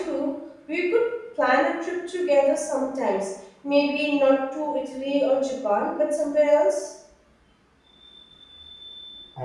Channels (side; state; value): both; identical; correlation 1.00